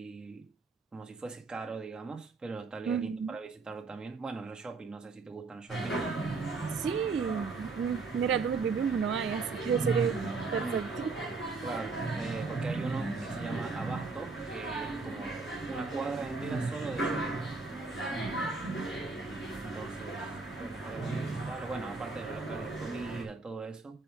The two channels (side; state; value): left; quieter; 4.2 dB